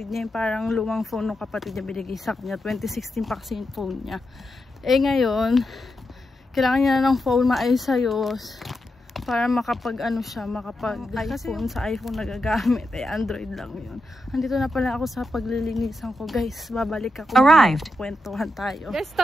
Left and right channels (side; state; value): both; normal; correlation 0.87